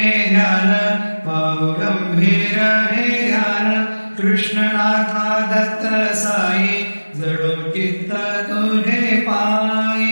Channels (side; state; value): both; inverted; correlation -1.00